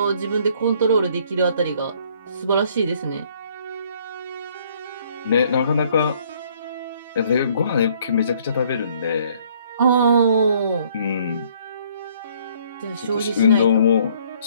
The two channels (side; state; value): both; inverted; correlation -0.62